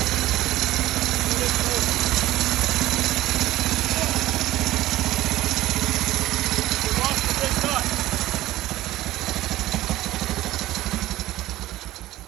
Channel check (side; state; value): left; quieter; 15.8 dB